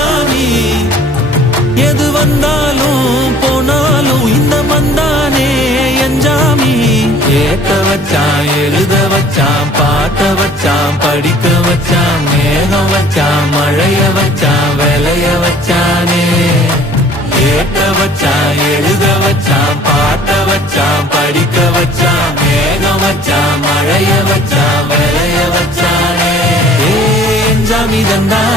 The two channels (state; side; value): normal; both; correlation 0.52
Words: எது வந்தாலும் போனாலும் இந்த மந்தானே என்ஜாமி. ஏத்த வச்சான், எழுத வச்சான், பாட்ட வச்சான், படிக்க வச்சான், மேகம் வச்சான், மழைய வச்சான், விளைய வச்சானே. ஏத்த வச்சான், எழுத வச்சான், பாட்ட வச்சான், படிக்க வச்சான், மேகம் வச்சான், மழைய வச்சான், விளைய வச்சானே. ஏ என்ஜாமி